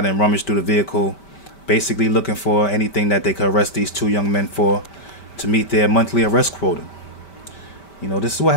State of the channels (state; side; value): late; right; 5.1 ms